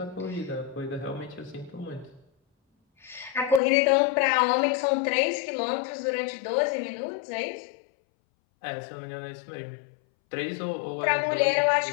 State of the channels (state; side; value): drops out; right; at 3.6 s